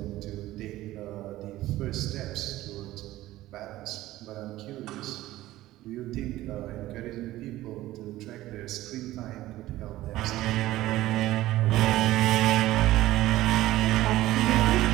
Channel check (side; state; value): left; quieter; 16.0 dB